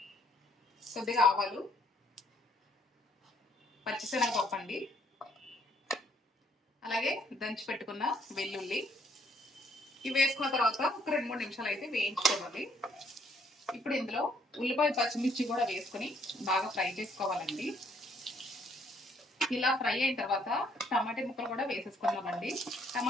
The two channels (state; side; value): normal; both; correlation 0.66